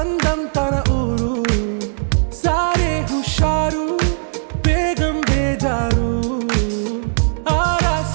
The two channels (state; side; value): silent; left; digital silence